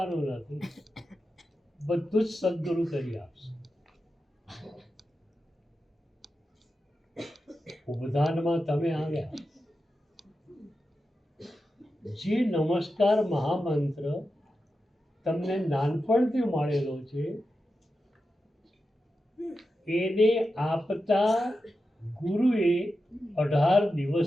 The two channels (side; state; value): both; normal; correlation 0.90